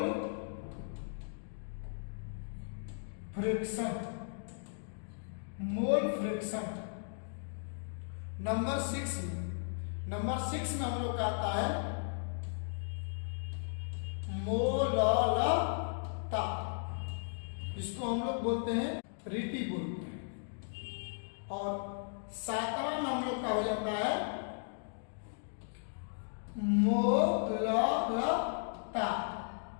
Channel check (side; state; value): right; silent; digital silence